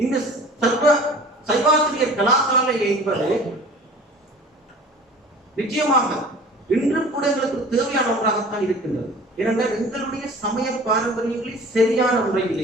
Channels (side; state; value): both; normal; correlation 0.44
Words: இந்த சைவாசிரியர் கலாசாலை என்பது நிச்சயமாக இன்று கூட எங்களுக்கு தேவையான ஒன்றாகத்தான் இருக்கின்றது. ஏனென்றால் எங்களுடைய சமய பாரம்பரியங்களை சரியான